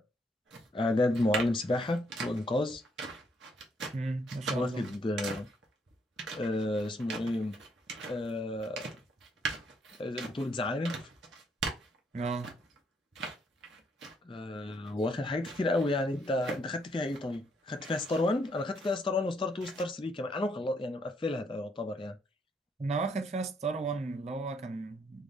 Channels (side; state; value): both; normal; correlation 0.71